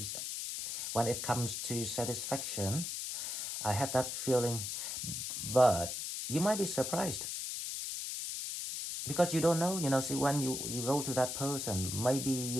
when it comes to satisfaction. I have that feeling, but you might be surprised because you don't know. See, when you go to that person, maybe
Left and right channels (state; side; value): noise; left; hiss, 4 dB below the sound